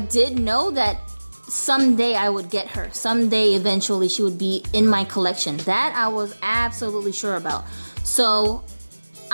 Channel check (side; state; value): both; inverted; correlation -1.00